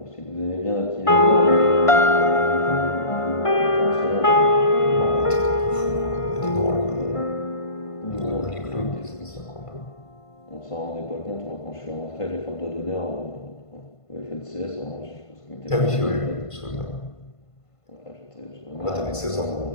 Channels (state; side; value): late; right; 1.5 ms